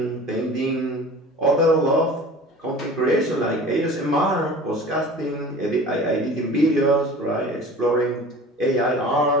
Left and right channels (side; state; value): both; normal; correlation 0.41